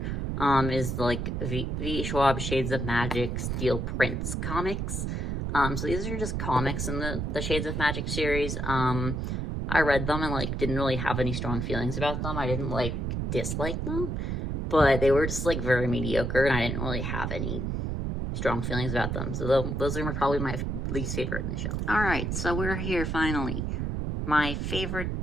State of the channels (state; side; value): noise; right; rumble, 1 dB below the sound